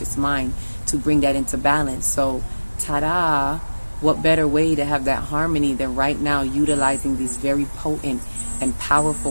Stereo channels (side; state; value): both; inverted; correlation -1.00